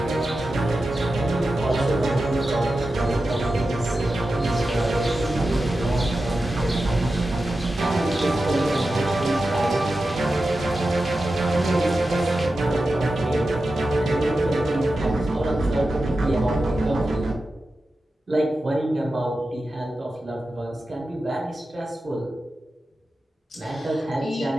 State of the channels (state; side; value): normal; both; correlation 0.92